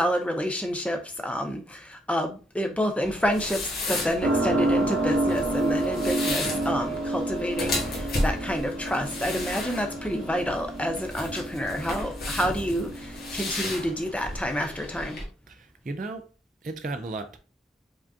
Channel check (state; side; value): normal; both; correlation 0.74